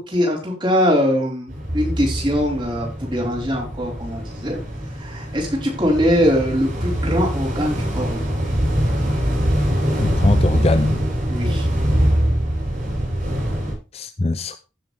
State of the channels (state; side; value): normal; both; correlation 0.80